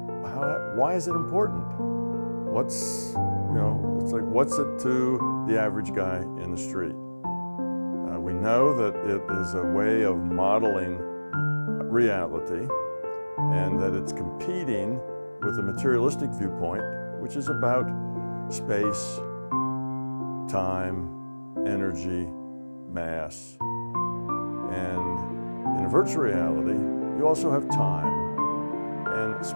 why is it important? It's like, what's it to the average guy in the street? We know that it is a way of modeling reality and that it's competing with a materialistic viewpoint, which is about space, time, energy, mass. And in a virtual reality, you also have time, and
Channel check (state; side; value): inverted; both; correlation -1.00